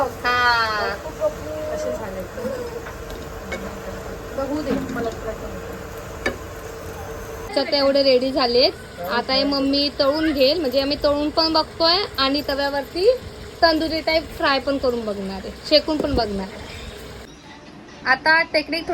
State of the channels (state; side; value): identical; both; correlation 1.00